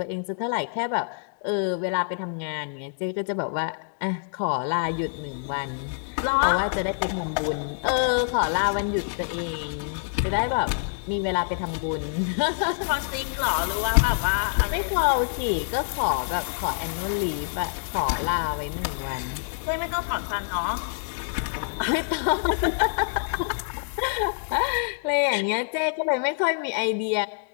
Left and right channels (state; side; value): silent; right; digital silence